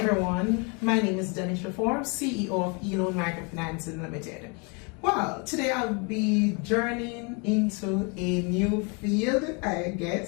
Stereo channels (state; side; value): quieter; right; 33.0 dB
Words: my name is Denisher Forbes, CEO of Microfinancing Limited. Well, today I'll be journeying into a new field, I